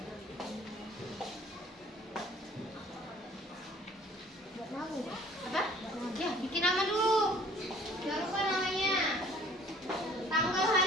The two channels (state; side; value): normal; both; correlation 0.53